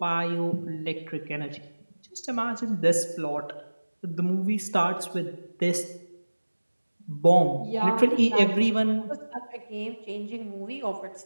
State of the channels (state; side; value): inverted; both; correlation -1.00